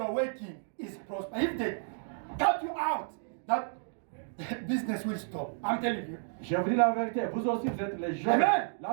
working is prosper. If they cut you out, that business will stop. I'm telling you. Je vous dis la vérité, vous aussi vous êtes les Joseph. Amen.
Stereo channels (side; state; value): left; silent; digital silence